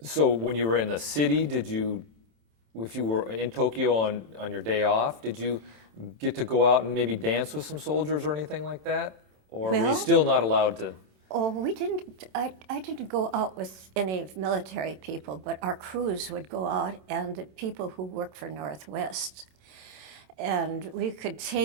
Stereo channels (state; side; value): late; left; 27 ms